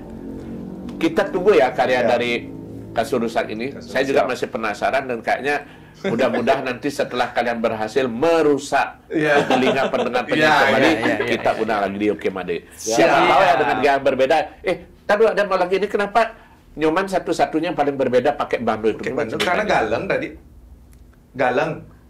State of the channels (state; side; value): identical; both; correlation 1.00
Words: kita tunggu ya karya dari Kasurusak ini. Saya juga masih penasaran dan kayaknya mudah-mudahan nanti setelah kalian berhasil merusak telinga pendengar kembali, kita undang lagi di Oke Made. Siapa tahu ya dengan gaya berbeda. Tadi ada mau lagi ini kenapa Nyoman satu-satunya paling berbeda pakai bando itu? Karena galeng tadi. Galeng